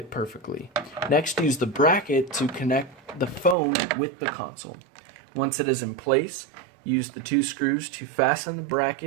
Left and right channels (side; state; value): left; drops out; at 3.6 s